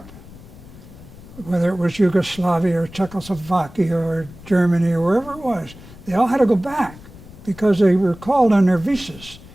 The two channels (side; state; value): left; noise; rumble, 19 dB below the sound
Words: whether it was Yugoslavia or Czechoslovakia or Germany or wherever it was. They all had to go back because they were called on their visas.